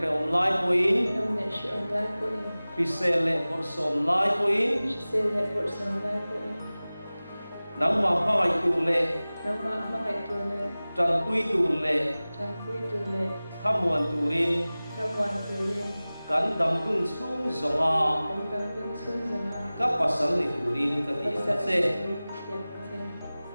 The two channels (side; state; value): both; inverted; correlation -0.98